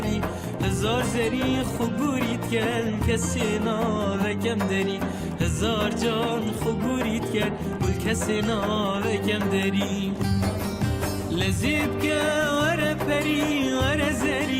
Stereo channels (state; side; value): identical; both; correlation 1.00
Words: هزار زری خوبوریت کن کسی ناوکم داری هزار جان خوبوریت کن بل کسی ناوکم داری لذیب که ور پری ور